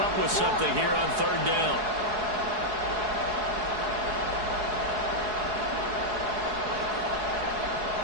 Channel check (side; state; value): left; late; 4.7 ms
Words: with something here on 3rd down.